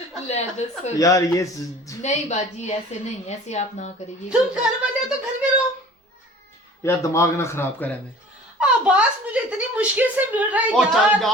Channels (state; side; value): normal; both; correlation 0.45